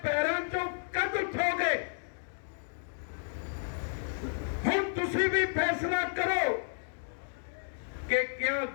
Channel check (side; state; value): right; silent; digital silence